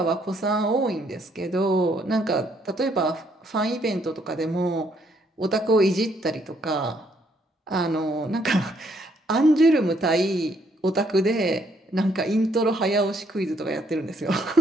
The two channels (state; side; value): normal; both; correlation 0.70